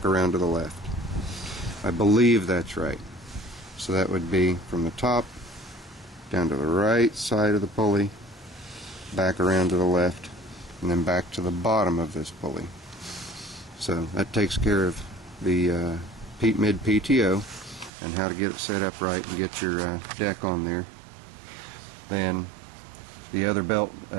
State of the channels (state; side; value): drops out; left; at 17.9 s